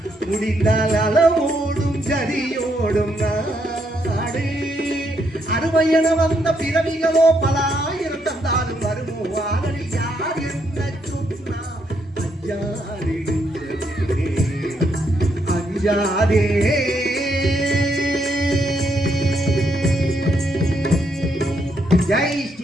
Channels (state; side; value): normal; both; correlation 0.76